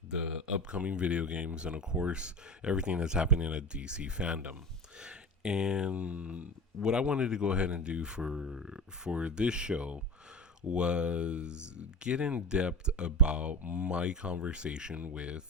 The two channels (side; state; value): both; normal; correlation 0.31